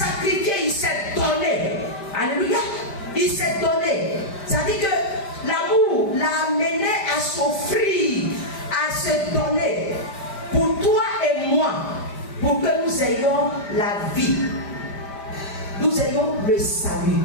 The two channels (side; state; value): right; late; 5.0 ms